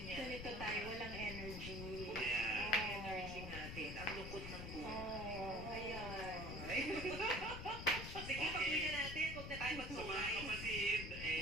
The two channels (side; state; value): left; noise; rumble, 7 dB below the sound